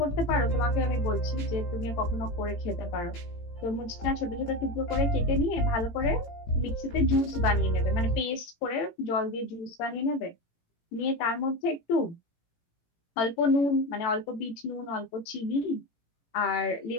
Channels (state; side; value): late; right; 18 ms